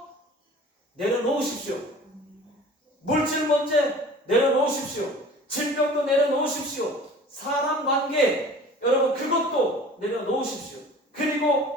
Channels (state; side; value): normal; both; correlation 0.44